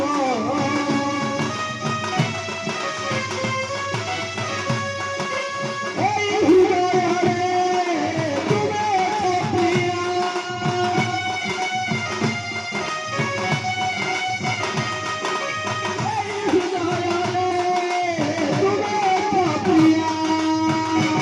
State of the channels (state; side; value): identical; both; correlation 1.00